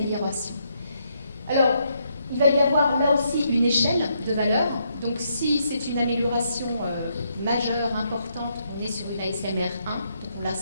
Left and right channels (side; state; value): both; inverted; correlation -0.76